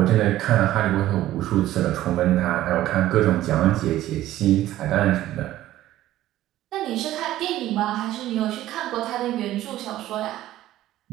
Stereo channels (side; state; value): left; quieter; 14.3 dB